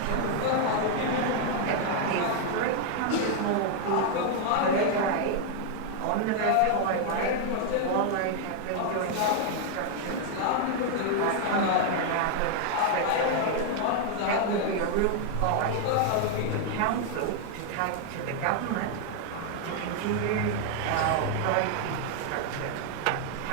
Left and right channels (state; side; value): different; both; correlation 0.00